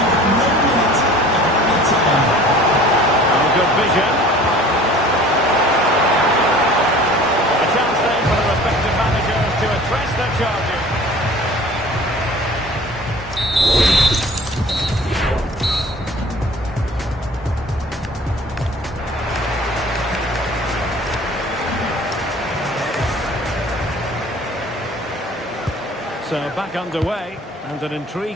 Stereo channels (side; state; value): both; normal; correlation 0.46